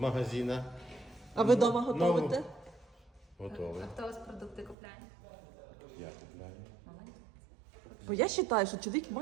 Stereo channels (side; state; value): left; drops out; at 4.8 s